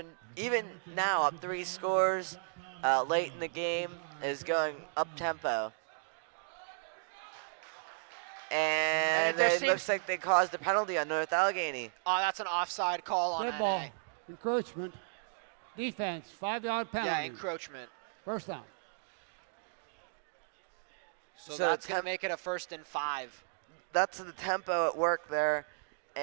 even now up 3 scores late in the game, is going up-tempo. And it looks like they caused a penalty on North Allegheny. Oh, that's an offside call on Good ball. NA. Encroachment. Defense. 5-yard penalty. Yeah, encroachment. First down. So that's going to make it a 1st and 5. That's the tempo at work there.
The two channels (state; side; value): silent; left; digital silence